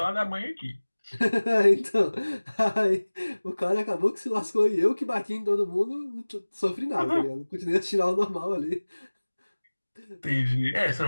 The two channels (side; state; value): both; inverted; correlation -1.00